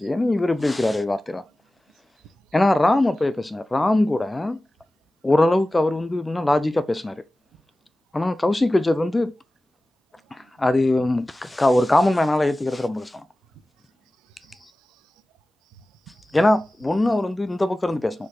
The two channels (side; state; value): both; normal; correlation 0.96